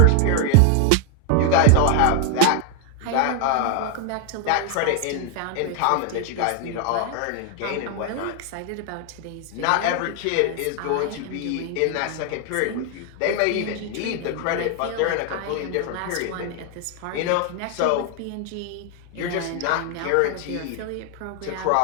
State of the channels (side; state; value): both; different; correlation 0.00